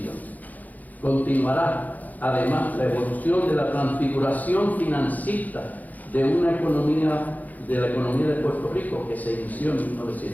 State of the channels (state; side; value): late; right; 0.080 ms